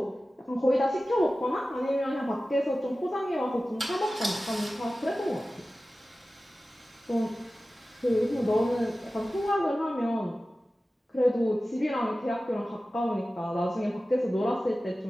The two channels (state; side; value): normal; both; correlation 0.95